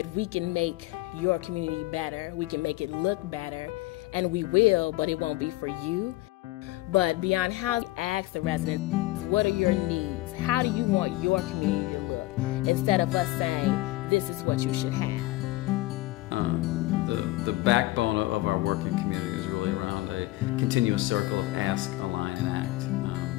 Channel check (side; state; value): right; quieter; 18.6 dB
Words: we can make your community better, we can make it look better, and we will, but it won't be for you. But beyond housing, ask the residents, what are your needs? How do you want your community to look? Instead of us saying, this is what you should have. The backbone of our working community is really around a continuous circle of ask, align, and act.